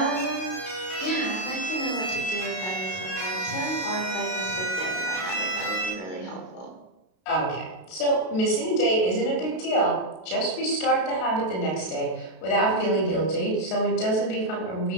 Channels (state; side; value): late; right; 32 ms